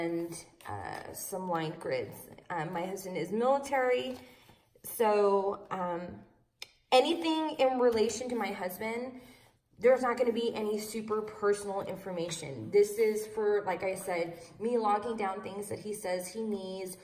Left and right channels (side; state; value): both; identical; correlation 1.00